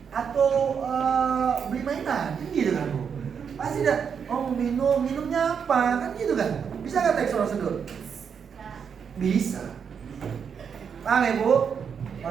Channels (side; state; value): left; quieter; 6.9 dB